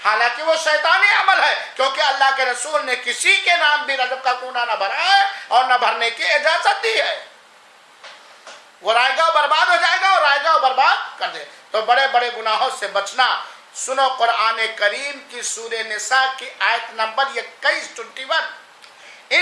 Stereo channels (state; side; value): identical; both; correlation 1.00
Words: حالانکہ وہ شیطانی عمل ہے، کیونکہ اللہ کے رسول نے کسی کے نام بھی رجب کا کونا نہ بھرا ہے اور نہ بھرنے کی اجازت دی ہے۔ وہ رائے گا برباد ہو جائے گا اور رائے گا برباد کر دے۔ تو بڑے بڑے گناہوں سے بچنا، سنو قرآن کریم کی سورہ نساء کی آیت نمبر 21